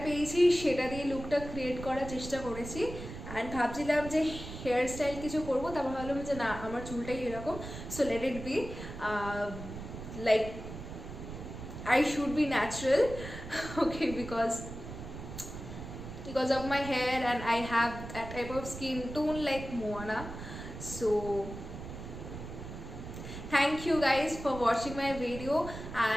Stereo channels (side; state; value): right; noise; rumble, 10 dB below the sound